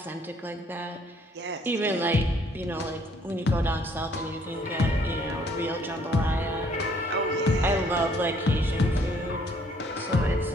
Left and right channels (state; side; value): normal; both; correlation 0.63